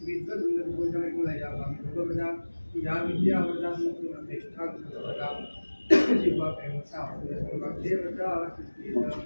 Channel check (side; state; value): both; inverted; correlation -1.00